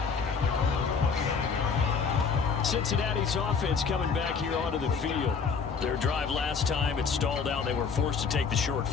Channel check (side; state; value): right; quieter; 5.6 dB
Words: Cincinnati's offense coming back here onto the field. Their drive last time, it stalled out. They were forced to take the short